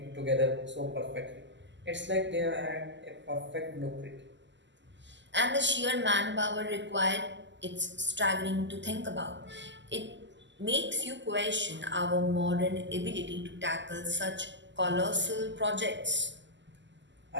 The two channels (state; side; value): late; left; 0.53 ms